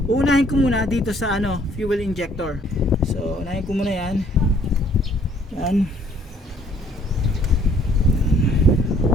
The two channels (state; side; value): normal; both; correlation 0.61